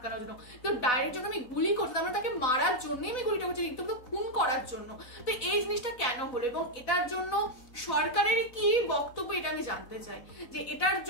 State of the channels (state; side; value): late; right; 4.0 ms